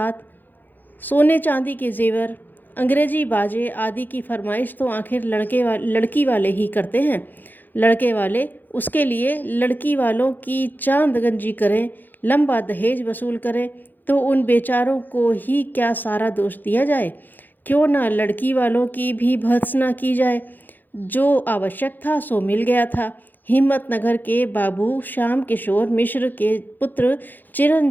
सोने चांदी के जेवर, अंग्रेजी बाजे आदि की फरमाइश तो आखिर लड़की वाले ही करते हैं। लड़के वाले उसके लिए लड़की वालों की चांद गंजी करें, लंबा दहेज वसूल करें तो उन बेचारों को ही क्या सारा दोष दिया जाए। क्यों ना लड़की वालों की भी भर्त्सना की जाए। जो आवश्यक था सो मिल गया था। हिम्मतनगर के बाबू श्याम किशोर मिश्र के पुत्र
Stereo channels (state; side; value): late; right; 0.088 ms